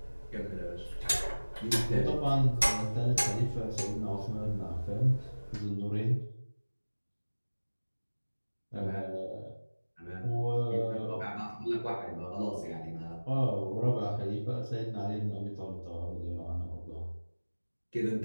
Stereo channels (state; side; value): inverted; both; correlation -1.00